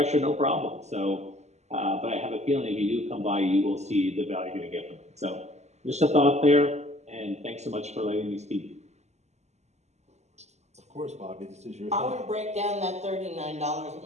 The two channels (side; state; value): left; late; 0.33 ms